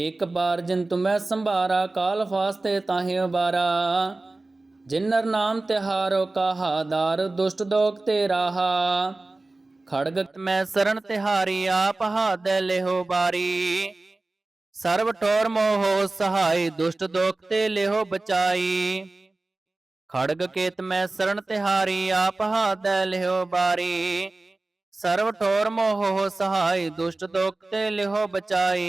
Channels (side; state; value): left; quieter; 3.1 dB